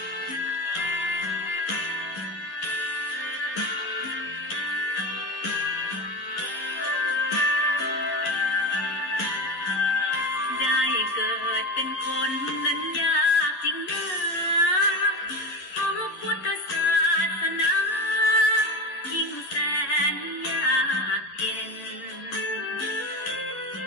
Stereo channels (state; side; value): late; right; 11 ms